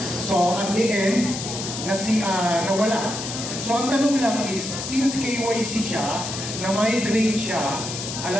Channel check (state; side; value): noise; left; hiss, 6 dB below the sound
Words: So, at the end, nawala. So, ang tanong lang is, since KYC siya, na-migrate siya,